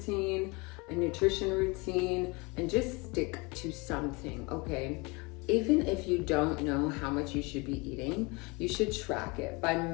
a nutrition routine, and just stick to something, okay? Even if you don't know how much you should be eating, you should track it by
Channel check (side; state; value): right; quieter; 27.3 dB